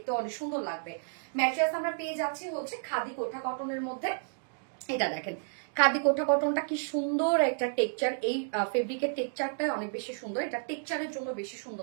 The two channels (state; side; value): silent; left; digital silence